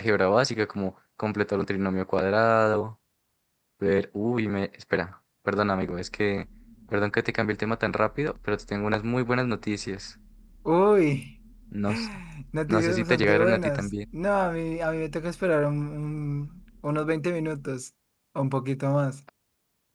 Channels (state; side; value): identical; both; correlation 1.00